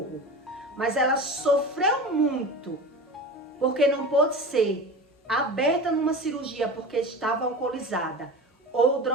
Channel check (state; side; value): normal; both; correlation 0.30